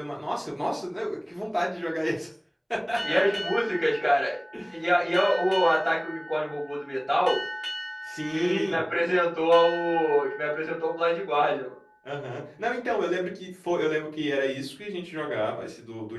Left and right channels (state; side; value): identical; both; correlation 1.00